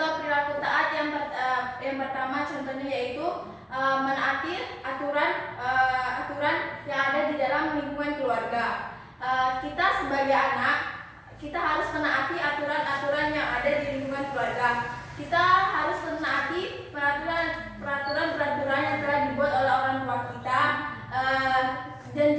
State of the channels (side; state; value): both; identical; correlation 1.00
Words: perilaku taat yang pertama contohnya yaitu menaati aturan yang ada di dalam lingkungan keluarga. Kita sebagai anak, kita harus menaati aturan-aturan yang ada di lingkungan keluarga. Kita harus menaati peraturan-peraturan yang telah dibuat oleh orang tua kita. Dan